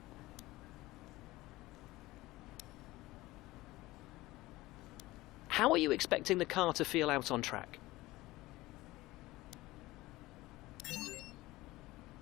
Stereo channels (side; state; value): right; quieter; 18.9 dB